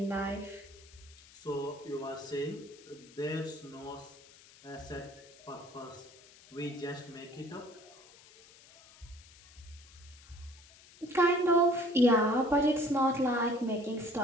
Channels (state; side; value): noise; left; hiss, 23 dB below the sound